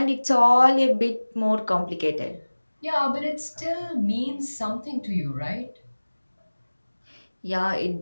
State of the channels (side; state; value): both; inverted; correlation -1.00